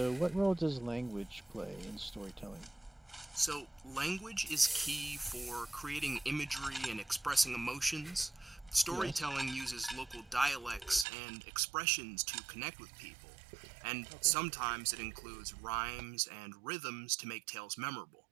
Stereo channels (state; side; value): drops out; left; at 11.1 s